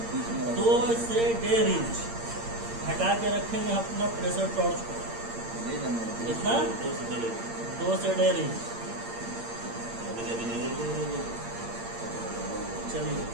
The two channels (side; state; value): left; late; 8.7 ms